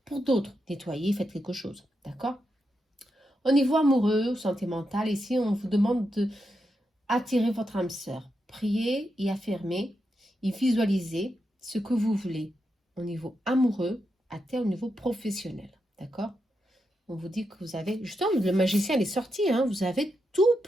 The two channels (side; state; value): both; normal; correlation 0.85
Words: Pour d'autres, nettoyez, faites quelque chose. D'accord? Au niveau amoureux, santé mentale, ici, on vous demande de attirer votre âme sœur. Priez et affirmez et visualisez ce que vous voulez au niveau amoureux, au niveau professionnel. D'accord? On vous dit que vous avez... Justement, le magicien, il est sorti. Hein, vous avez tout